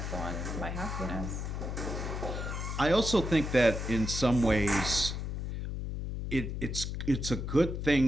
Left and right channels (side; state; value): left; noise; hum, 4 dB below the sound